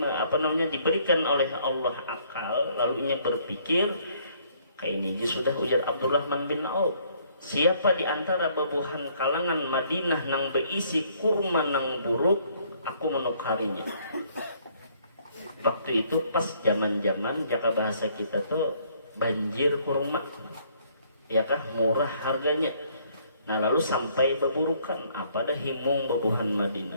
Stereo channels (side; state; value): both; inverted; correlation -0.64